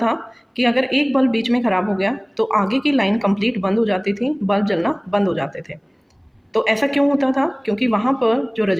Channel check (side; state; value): both; identical; correlation 1.00